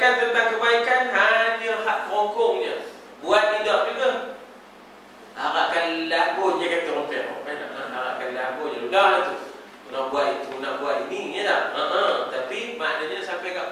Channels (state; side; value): identical; both; correlation 1.00